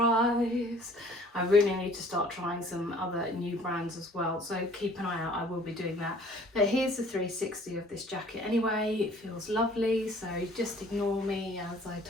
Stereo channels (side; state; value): both; normal; correlation 0.53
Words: I really need to start trying some other new brands as well, so keep an eye out. I will be doing that. But here's the 360 of this jacket anyway. It feels lovely, so just ignore me as I